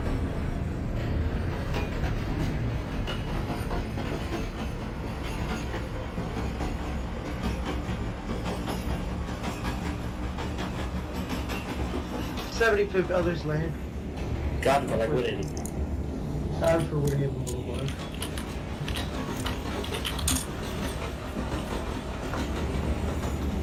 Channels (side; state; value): both; identical; correlation 1.00